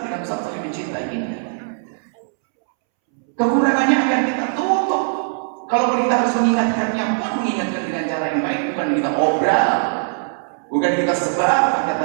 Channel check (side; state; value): left; silent; 66 dB below the other